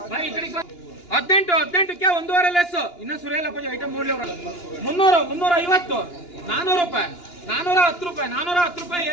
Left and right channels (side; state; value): right; late; 2.9 ms